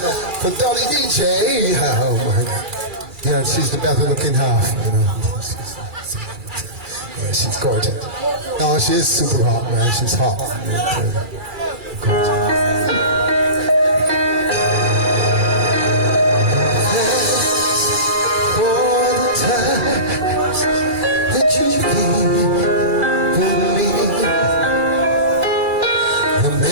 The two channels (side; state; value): left; late; 2.3 ms